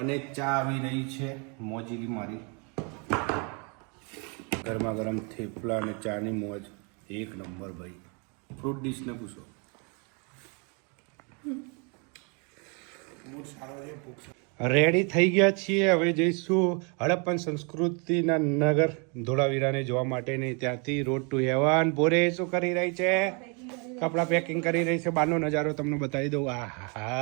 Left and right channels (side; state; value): left; quieter; 34.5 dB